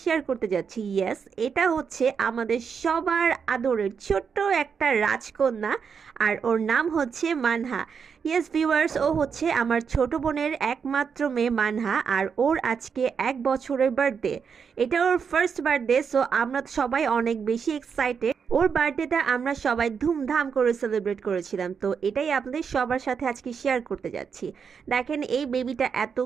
শেয়ার করতে যাচ্ছি। ইয়েস, এটা হচ্ছে আমাদের সবার আদরের ছোট্ট একটা রাজকন্যা, আর ওর নাম হচ্ছে মানহা। ইয়েস ভিউয়ার্স, ও হচ্ছে আমার ছোট বোনের একমাত্র মেয়ে মানহা, আর ওর আজকে 1 বছরের বার্থডে। এটা ওর ফার্স্ট বার্থডে, সো আমরা সবাই অনেক বেশি এক্সাইটেড। ওর বার্থডেটা আমরা সবাই ধুমধাম করে সেলিব্রেট করেছিলাম, তো এটাই আপনাদের সবার সাথে আজকে শেয়ার করতে যাচ্ছি। দেখেন এই বেবিটা এত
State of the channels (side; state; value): left; quieter; 6.4 dB